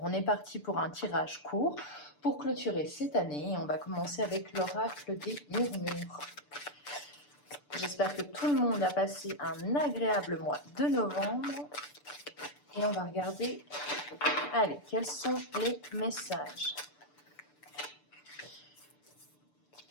on est parti pour un tirage court pour clôturer cette année. On va commencer avec l'oracle des murmures. J'espère que tout le monde a passé un agréable mois de novembre. Et on va regarder, allez, quels sont les messages.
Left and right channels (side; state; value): right; late; 6.8 ms